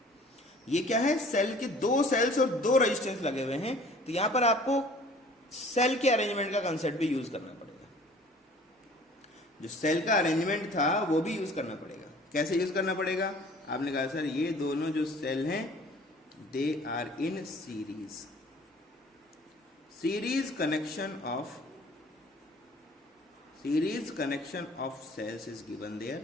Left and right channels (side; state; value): both; normal; correlation 0.50